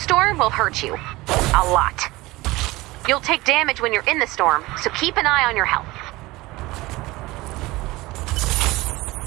will hurt you. A lot. You'll take damage when you're in the storm, so keep an eye on your health.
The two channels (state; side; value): quieter; left; 20.3 dB